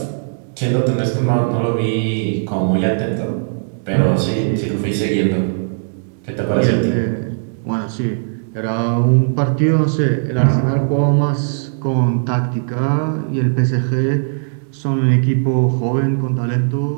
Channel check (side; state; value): left; silent; digital silence